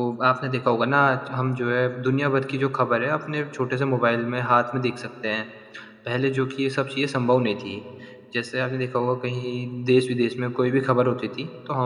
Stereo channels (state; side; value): identical; both; correlation 1.00